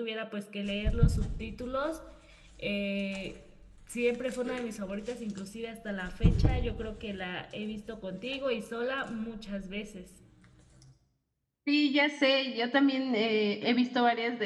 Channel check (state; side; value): identical; both; correlation 1.00